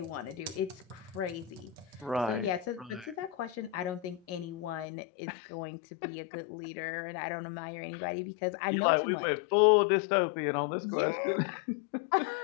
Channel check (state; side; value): drops out; right; at 4.9 s